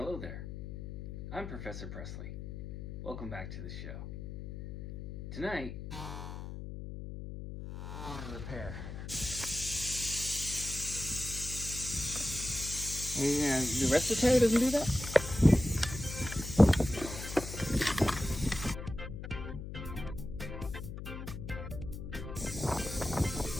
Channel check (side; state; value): left; noise; hum, 9 dB below the sound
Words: there, I'm Professor Presley. Welcome back to the show. Tonight, repair. Yeah, the rest of the tire doesn't do that?